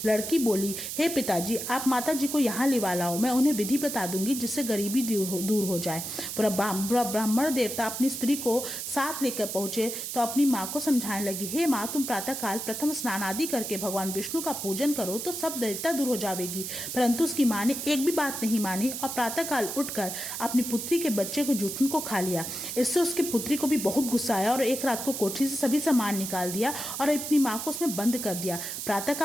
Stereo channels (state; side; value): noise; right; hiss, 5 dB below the sound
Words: लड़की बोली, हे पिताजी, आप माता जी को यहाँ लिवा लाओ, मैं उन्हें विधि बता दूंगी जिससे गरीबी दूर हो जाए। ब्राह्मण देवता अपनी स्त्री को साथ लेकर पहुंचे तो अपनी माँ को समझाने लगी, हे माँ, तुम प्रातः काल प्रथम स्नान आदि करके भगवान विष्णु का पूजन करो तो सब दैत्यता दूर हो जाएगी। परंतु उसकी माँ ने एक भी बात नहीं मानी और प्रातः काल उठकर अपनी पुत्री के बच्चे को जूठन को खा लिया। इससे उसकी पुत्री को भी बहुत गुस्सा आया और एक रात को कोठरी से सभी सामान निकाल दिया और अपनी माँ को उसमें बंद कर दिया।